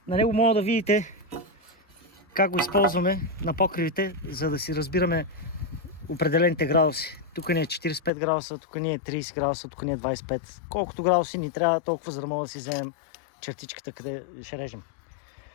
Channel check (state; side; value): drops out; right; at 8.1 s